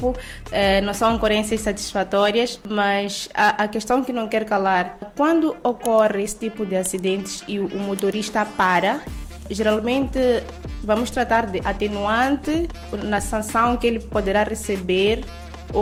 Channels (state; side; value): identical; both; correlation 1.00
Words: não são ocorrências satisfatórias, mas a questão que não quer calar, quando ocorre esse tipo de acidentes e o motorista para, geralmente vamos tratar de atenuante na sanção que ele poderá receber